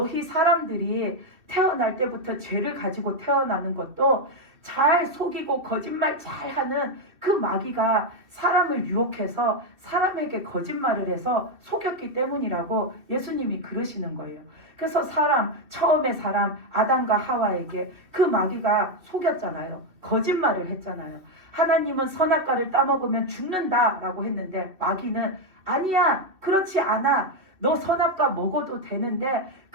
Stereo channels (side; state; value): left; late; 2.5 ms